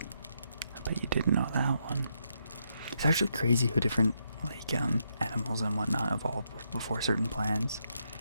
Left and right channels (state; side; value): inverted; both; correlation -0.79